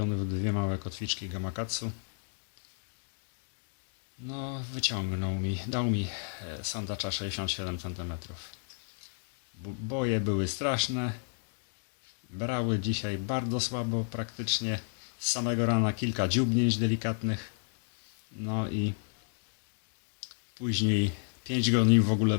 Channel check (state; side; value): silent; right; digital silence